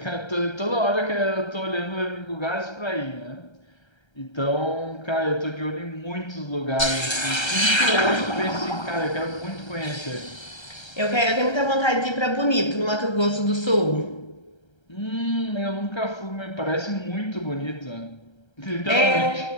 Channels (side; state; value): right; late; 1.3 ms